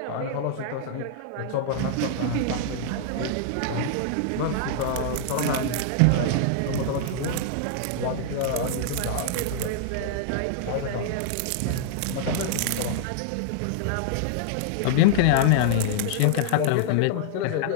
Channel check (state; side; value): different; both; correlation -0.01